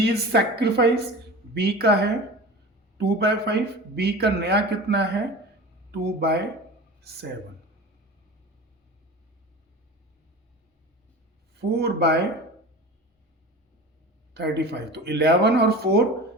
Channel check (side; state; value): both; normal; correlation 0.34